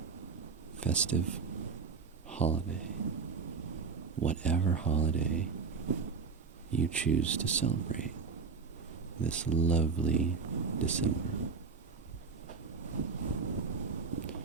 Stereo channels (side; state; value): left; quieter; 5.1 dB